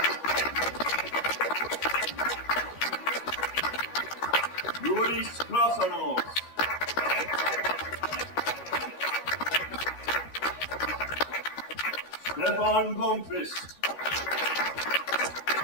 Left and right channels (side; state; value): right; late; 13 ms